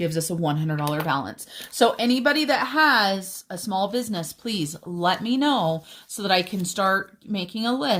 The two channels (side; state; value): both; identical; correlation 1.00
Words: us a $100 balance. So anybody that has a small business, please let me know so that I can start making a